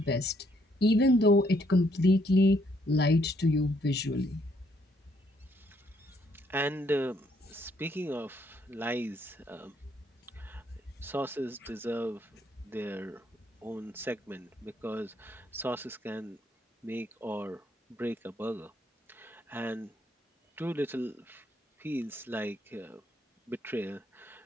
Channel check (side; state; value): both; normal; correlation 0.70